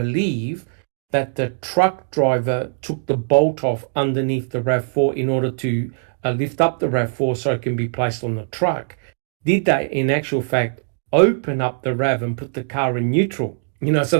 that the truck driver took the bolt off underneath the RAV4 in order to lift up the RAV4 so it can be placed on the truck. Did they, in actual fact, open up the RAV and put the car in neutral, so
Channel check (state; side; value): silent; left; digital silence